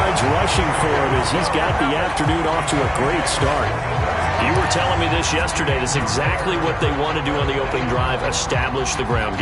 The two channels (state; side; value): identical; both; correlation 1.00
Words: rushing for him as he's got the afternoon off to a great start. You were telling me this yesterday. That's exactly what they want to do on the opening drive, establish the ground